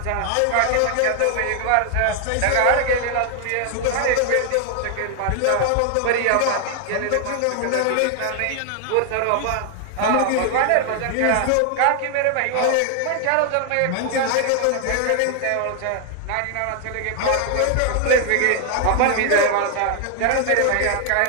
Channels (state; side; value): different; both; correlation 0.00